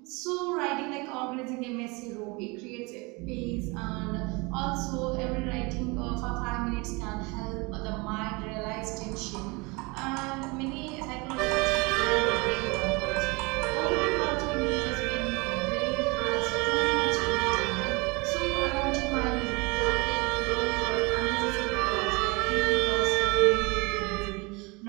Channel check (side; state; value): left; quieter; 26.9 dB